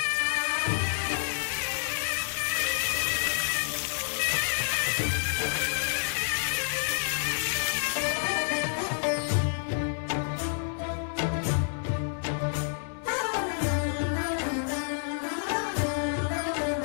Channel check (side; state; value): right; silent; 59 dB below the other